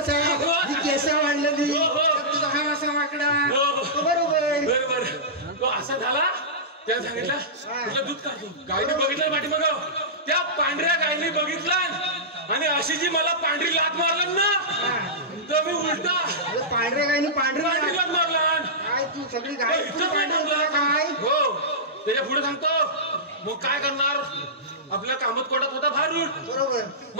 ही केस वाढलेली हो, हो. त्यात तुझा हा असा वाकडा हो, हो. तो बरोबर बरोबर तो असा झाला त्याने सांगितलं तुला दूध काढतो गायने बघितलं पाठीमाग त्या पांढऱ्या गायने बघितलं आणि अशी जी मला पांढरी लात मारलं ना तर मी उलटा अरे पांढरे गायनी पांढरी पांढरे लात मारला काय तू सगळी गाय इथं काय थांबला काय हो त्याच्या पुढे सांगतो मग काय करणार आपल्या कामात कोटात होता भारूट बरोबर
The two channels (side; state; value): both; normal; correlation -0.15